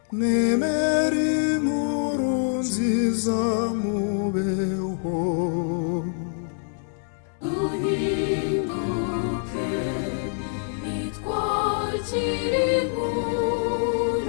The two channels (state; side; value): silent; right; 62 dB below the other